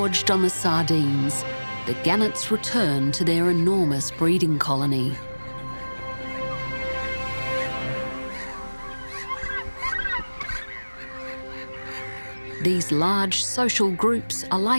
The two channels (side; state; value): both; inverted; correlation -1.00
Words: on the sardines, the gannets return to their enormous breeding colony. These large social groups are